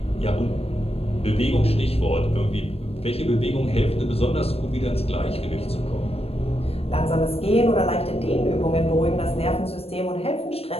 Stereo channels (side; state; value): right; late; 0.29 ms